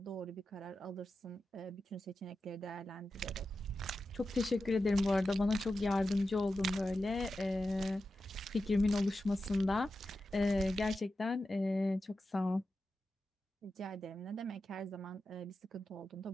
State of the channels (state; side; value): normal; both; correlation 0.91